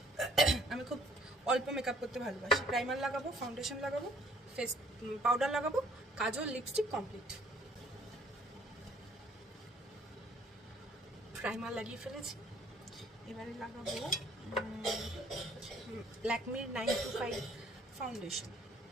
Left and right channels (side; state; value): both; normal; correlation 0.60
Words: আমি খুব অল্প মেকআপ করতে ভালোবাসি। প্রাইমার লাগাবো, ফাউন্ডেশন লাগাবো, ফেস পাউডার লাগাবো, কাজল, লিপস্টিক কমপ্লিট। প্রাইমার লাগিয়ে ফেলেছি, এবারে লাগাবো ল্যাকমির 925 ফাউন্ডেশন।